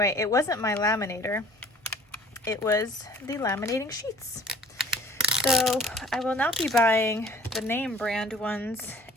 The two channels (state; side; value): normal; both; correlation 0.51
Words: it wasn't my laminator. It was the laminating sheets. So I will not be buying the name brand ones